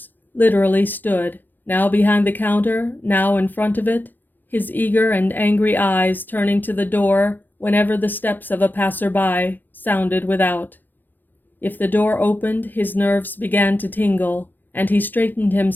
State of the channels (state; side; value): late; right; 0.091 ms